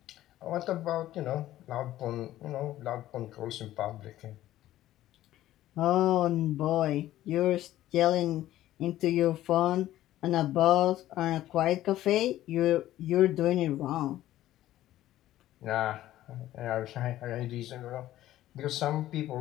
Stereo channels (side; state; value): right; quieter; 14.1 dB